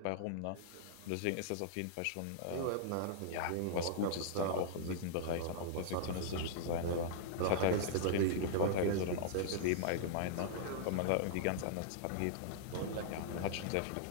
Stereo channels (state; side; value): different; both; correlation -0.01